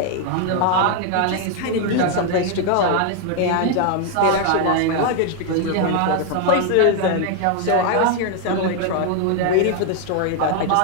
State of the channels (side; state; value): both; different; correlation 0.00